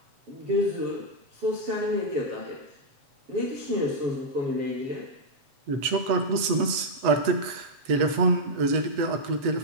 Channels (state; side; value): late; left; 8.0 ms